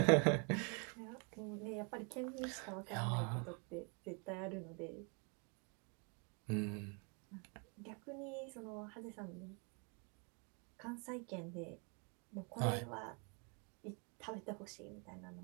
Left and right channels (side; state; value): left; quieter; 35.5 dB